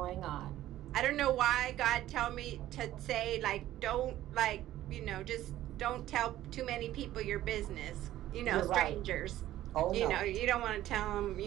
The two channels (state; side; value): quieter; left; 13.9 dB